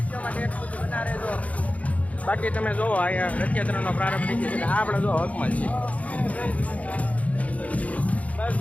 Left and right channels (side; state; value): right; late; 0.068 ms